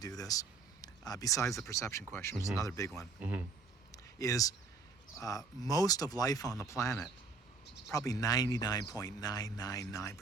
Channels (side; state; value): left; quieter; 4.3 dB